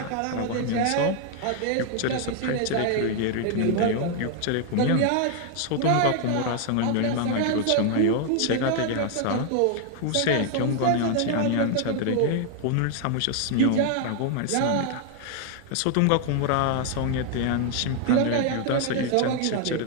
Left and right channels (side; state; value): both; different; correlation 0.00